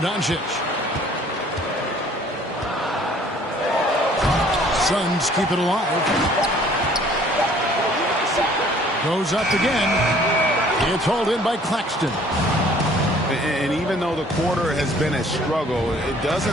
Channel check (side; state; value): both; normal; correlation 0.56